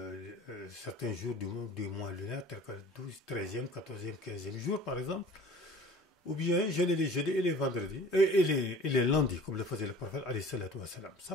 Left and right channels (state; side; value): normal; both; correlation 0.45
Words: certains jours du mois lunaire, tels que le 12, 13e, 14e, 15e jour par exemple, ou bien jeûner les jeudis et les vendredis, et les lundis, comme le faisait le prophète alayhi salatu wa salam.